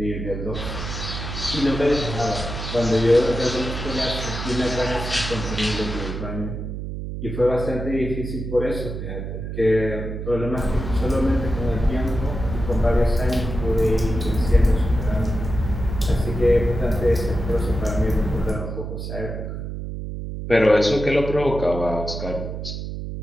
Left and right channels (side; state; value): right; noise; hum, 6 dB below the sound